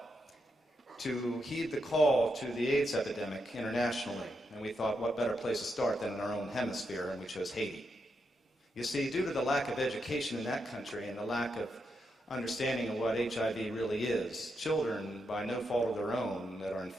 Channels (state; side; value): normal; both; correlation 0.83